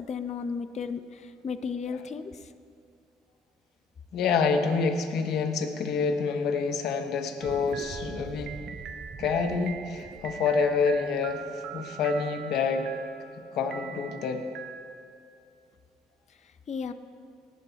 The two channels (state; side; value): quieter; right; 4.2 dB